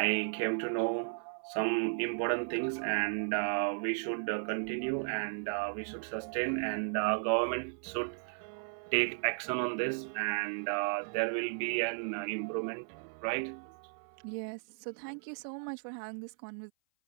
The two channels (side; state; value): left; silent; 54 dB below the other